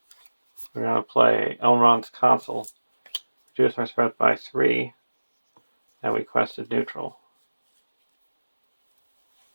We're going to play Elrond's Consul. Reduce our threat by 3. And we quested neutral.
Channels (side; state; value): both; inverted; correlation -1.00